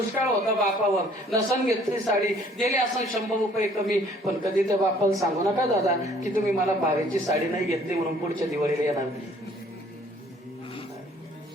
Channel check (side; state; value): both; normal; correlation 0.58